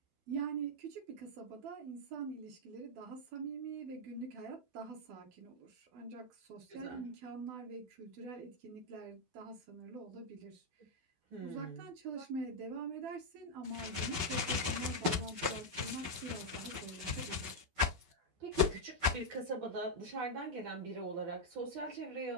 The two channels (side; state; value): left; late; 12 ms